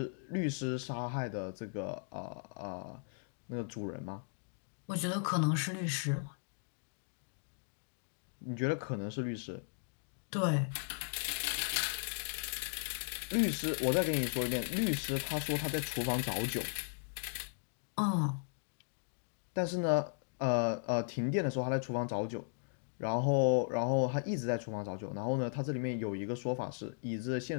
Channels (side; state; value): right; silent; digital silence